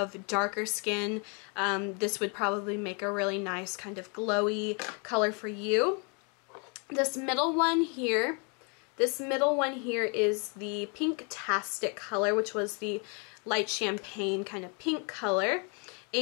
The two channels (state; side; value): quieter; right; 35.2 dB